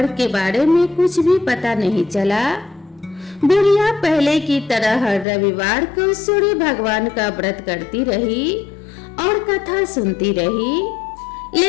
के बारे में कुछ भी पता नहीं चला। बुढ़िया पहले की तरह हर रविवार को सूर्य भगवान का व्रत करती रही और कथा सुनती रही।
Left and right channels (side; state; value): right; drops out; at 5.2 s